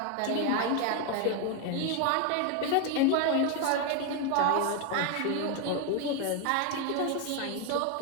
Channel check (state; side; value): different; both; correlation 0.01